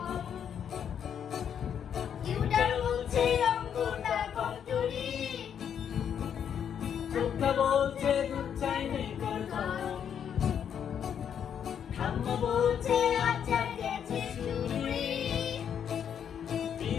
tutor বলছে অঙ্কটা কমজোরি, চোখটা বলছে দুধ চাইনি করতাম, ঠাম্মা বলছে আচার গেছে চুরি,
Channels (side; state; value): right; quieter; 8.4 dB